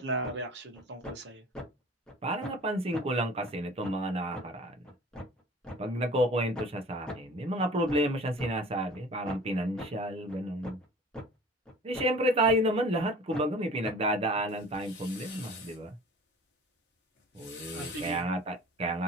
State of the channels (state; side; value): normal; both; correlation 0.44